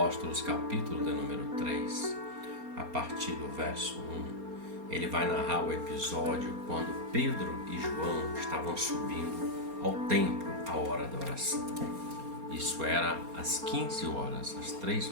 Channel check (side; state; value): left; late; 4.3 ms